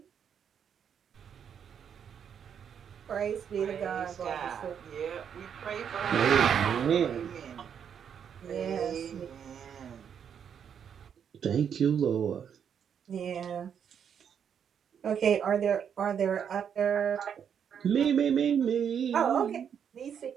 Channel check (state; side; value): quieter; left; 8.0 dB